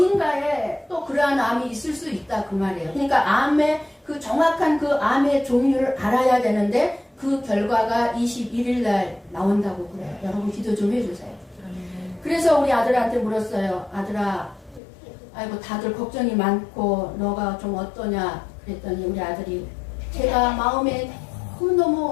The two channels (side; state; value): right; drops out; at 14.8 s